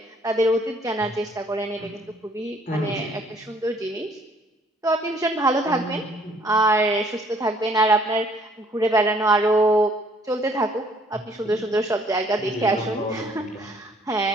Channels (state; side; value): normal; both; correlation 0.62